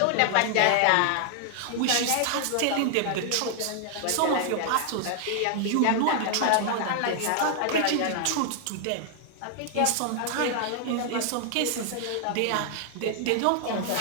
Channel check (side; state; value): both; different; correlation 0.00